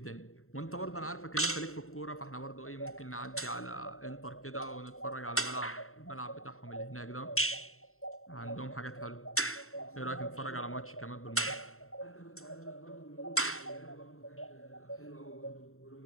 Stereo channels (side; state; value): right; late; 0.63 ms